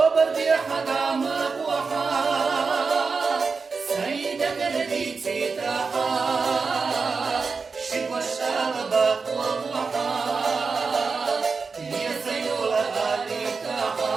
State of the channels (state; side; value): quieter; left; 4.8 dB